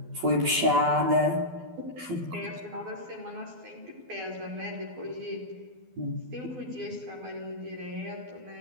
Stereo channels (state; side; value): late; left; 12 ms